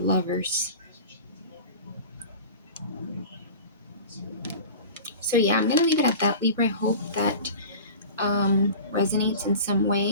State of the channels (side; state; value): both; inverted; correlation -0.36